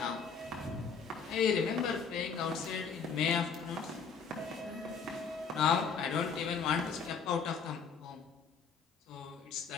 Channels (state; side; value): quieter; right; 5.8 dB